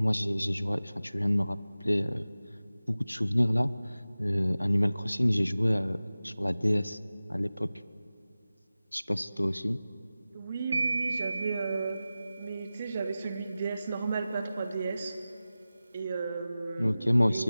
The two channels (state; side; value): inverted; both; correlation -0.96